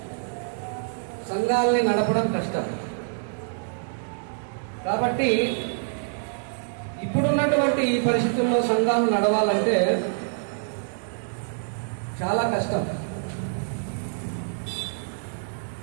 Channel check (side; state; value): left; silent; digital silence